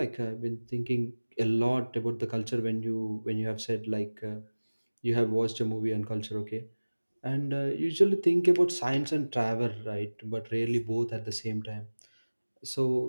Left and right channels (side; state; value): both; inverted; correlation -1.00